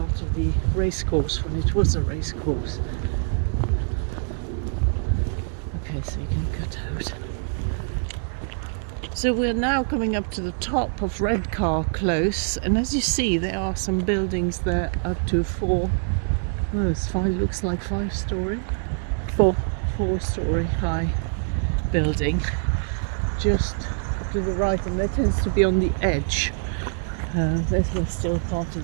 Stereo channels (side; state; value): left; silent; 62 dB below the other